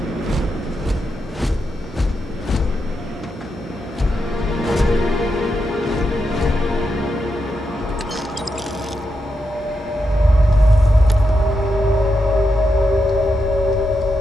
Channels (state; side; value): normal; both; correlation 0.85